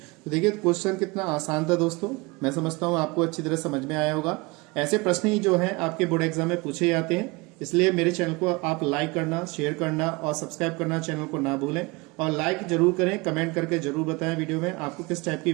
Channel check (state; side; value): quieter; left; 25.4 dB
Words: तो देखिए क्वेश्चन कितना आसान था दोस्तों। मैं समझता हूँ आपको अच्छी तरह समझ में आया होगा। ऐसे प्रश्न ही जो हैं आपके बोर्ड एग्जाम में पूछे जाते हैं, इसलिए मेरे चैनल को आप लाइक करना, शेयर करना और सब्सक्राइब करना चैनल को ना भूलें। और लाइक जरूर करें, कमेंट करके जरूर बताएं वीडियो में आपको किस टाइप की